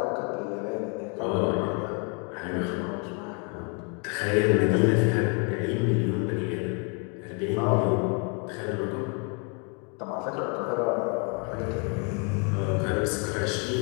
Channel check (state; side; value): quieter; right; 36.1 dB